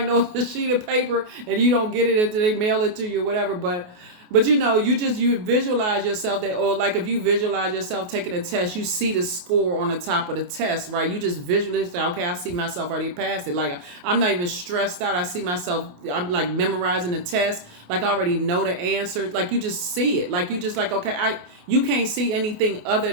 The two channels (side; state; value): left; late; 28 ms